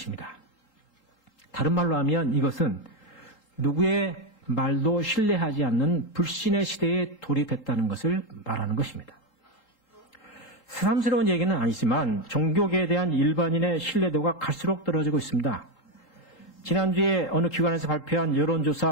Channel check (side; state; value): right; late; 3.8 ms